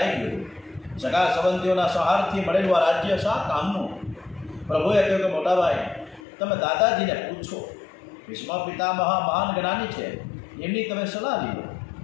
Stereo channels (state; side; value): drops out; right; at 6.2 s